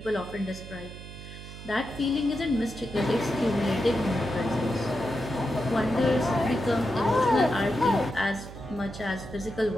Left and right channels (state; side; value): noise; right; hum, 13 dB below the sound